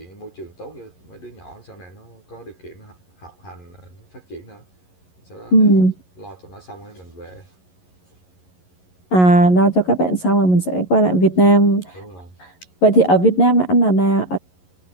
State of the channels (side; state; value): right; late; 11 ms